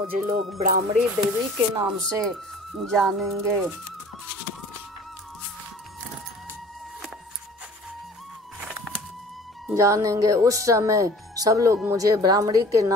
लोग ब्राह्मणी देवी के नाम से जानेंगे। उस समय सब लोग मुझे ब्राह्मणी के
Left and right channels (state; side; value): normal; both; correlation 0.48